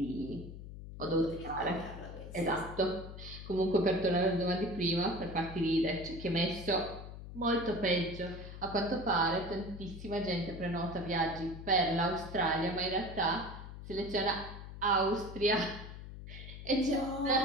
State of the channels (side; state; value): left; noise; hum, 11 dB below the sound